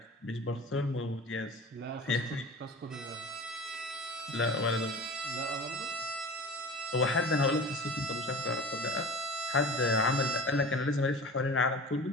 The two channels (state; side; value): normal; both; correlation 0.36